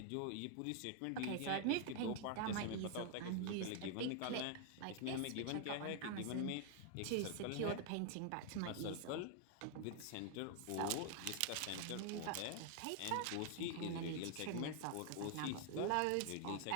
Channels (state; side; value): different; both; correlation 0.00